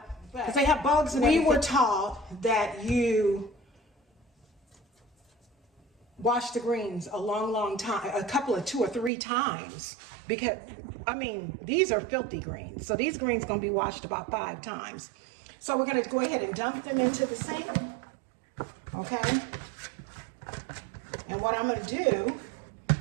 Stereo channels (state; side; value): drops out; left; at 9.1 s